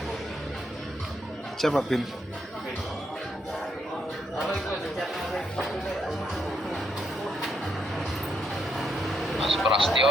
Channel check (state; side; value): normal; both; correlation 0.77